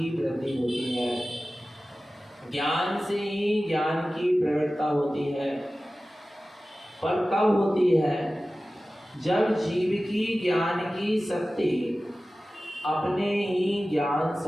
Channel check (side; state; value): both; normal; correlation 0.96